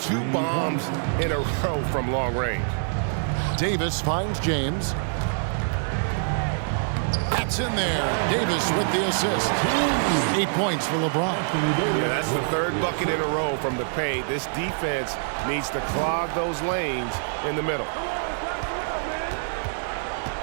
2 bombs in a row from long range. Davis finds James. That's in there. Davis with the assist. 8 points for LeBron. Yeah, that's the 3rd bucket in a row from the paint. This defense needs to clog those lanes in the middle.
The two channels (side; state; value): left; silent; digital silence